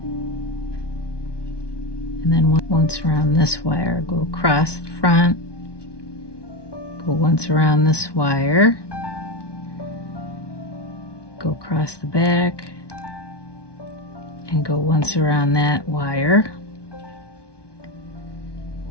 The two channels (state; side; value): late; right; 1.2 ms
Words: And then once around this wire, go across the front. Go once around this wire. Go across the back. And go once around that wire.